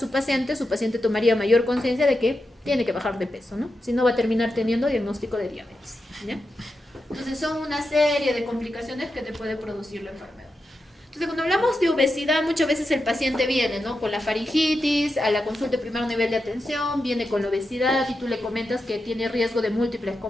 paciente tomaría mayor conciencia de que tiene que bajar de peso, ¿no? Si no, va a terminar teniendo diagnóstico de diabetes, ¿ya? Entonces, son una serie de complicaciones que te puede producir la enfermedad. Entonces, cuando hablamos de obesidad, muchas veces el paciente viene, ¿no? Con la faringitis, a la consulta de primer nivel de atención, viene con la obesidad y tú le comentas que tiene riesgo de múltiples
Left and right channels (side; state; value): both; normal; correlation 0.88